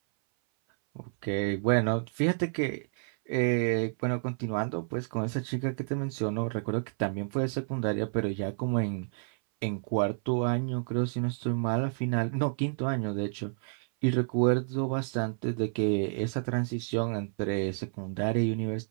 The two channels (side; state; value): left; silent; 58 dB below the other